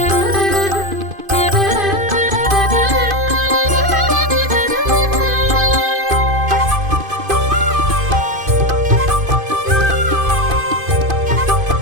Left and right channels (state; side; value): late; left; 2.5 ms